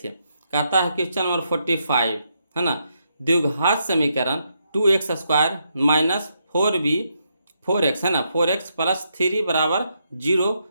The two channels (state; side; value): inverted; both; correlation -0.79